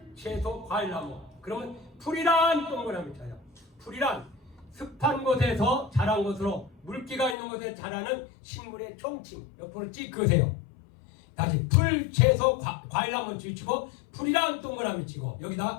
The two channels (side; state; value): right; drops out; at 7.4 s